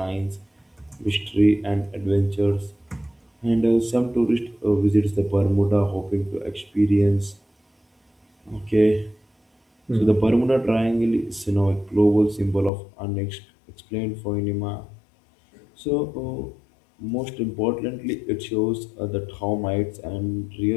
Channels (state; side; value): drops out; right; at 12.7 s